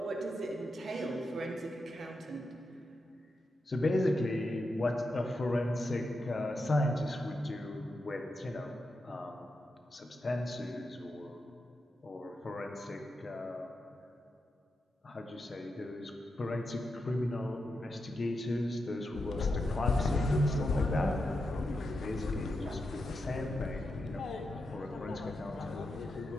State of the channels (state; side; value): normal; both; correlation 0.87